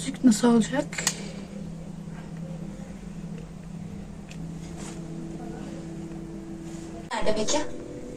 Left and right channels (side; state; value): both; identical; correlation 1.00